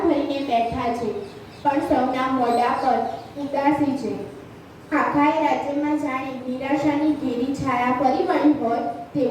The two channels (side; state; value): both; identical; correlation 1.00